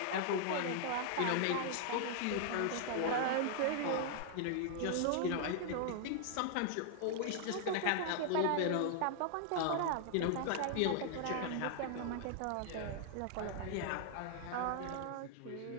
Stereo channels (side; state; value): both; different; correlation 0.00